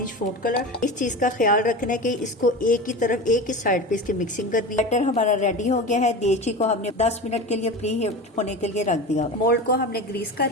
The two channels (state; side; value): normal; both; correlation 0.29